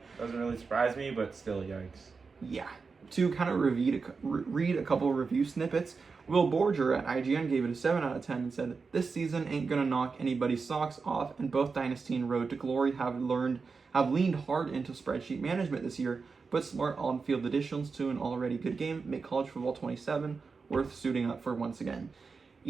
Doesn't really surprise me, but still, yikes. Yeah. To kind of read a couple of review snippets, Will Borger at IGN gave it a 7 out of 10 and said, "This season ain't gonna knock anybody's socks off, and both Dynasty and Road to Glory have leaned hard into spreadsheet management this year, but smart on-field additions to an already good game make College Football 27 worth suiting up for once again."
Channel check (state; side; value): quieter; left; 4.8 dB